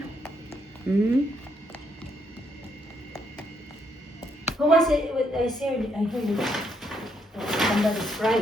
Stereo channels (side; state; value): both; normal; correlation 0.74